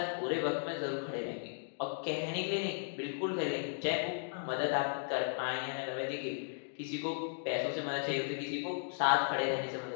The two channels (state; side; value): silent; right; digital silence